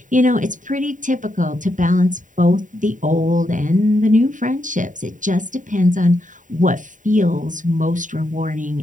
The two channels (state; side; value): late; left; 0.37 ms